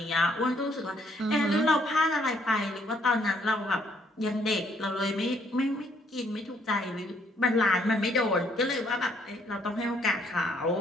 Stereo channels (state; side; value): normal; both; correlation 0.67